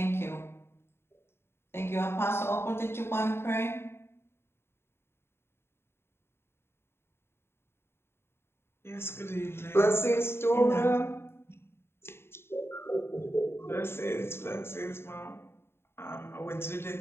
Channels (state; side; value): late; right; 0.12 ms